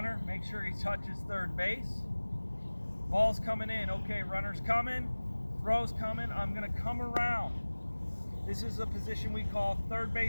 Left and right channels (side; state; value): both; inverted; correlation -1.00